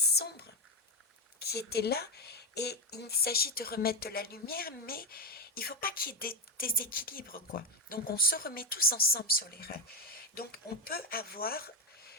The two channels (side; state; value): both; normal; correlation 0.08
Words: qui était là, et il s'agit de remettre de la lumière, mais il ne faut pas qu'il y ait des déséquilibres, quoi. Donc on se remet tous ensemble sur les rails. Donc on peut avoir